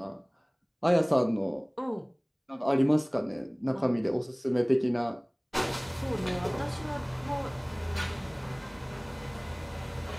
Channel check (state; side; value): identical; both; correlation 1.00